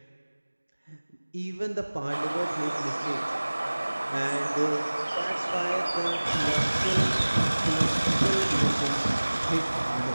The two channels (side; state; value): both; inverted; correlation -1.00